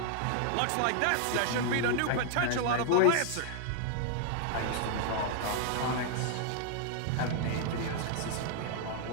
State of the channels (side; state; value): both; different; correlation 0.00